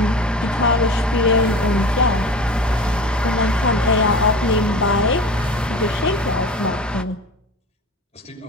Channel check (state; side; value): normal; both; correlation 0.35